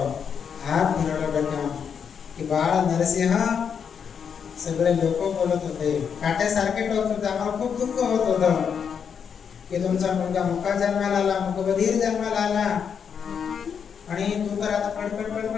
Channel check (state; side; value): quieter; right; 7.1 dB